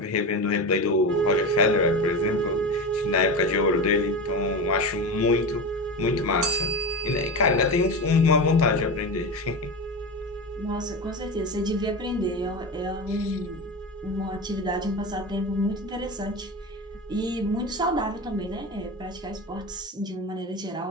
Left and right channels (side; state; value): both; normal; correlation 0.23